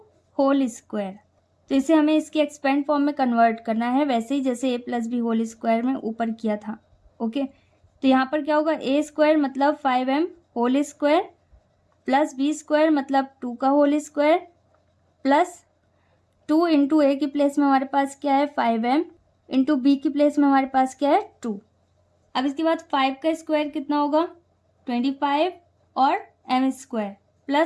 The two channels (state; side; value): identical; both; correlation 1.00